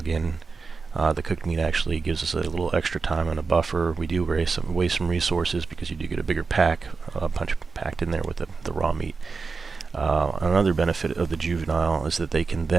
in, the cooked meat actually gives us a little extra time and a buffer. We do waste some resources because you do get a bigger punch packed in there with the raw meat. Another benefit of the juvenile is that they can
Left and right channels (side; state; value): left; quieter; 4.6 dB